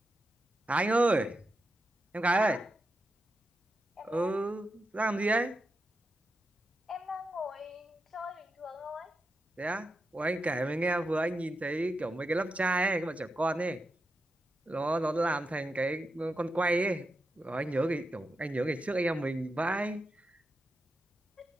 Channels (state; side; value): normal; both; correlation 0.87